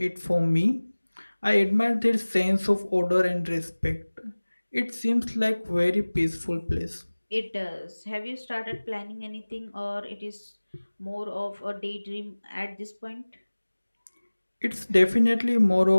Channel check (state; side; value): inverted; both; correlation -1.00